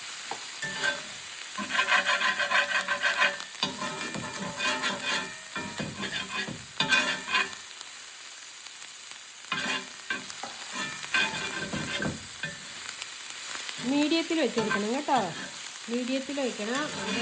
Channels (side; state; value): both; identical; correlation 1.00